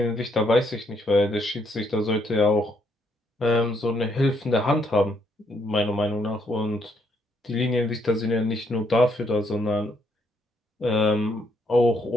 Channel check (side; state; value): both; normal; correlation 0.73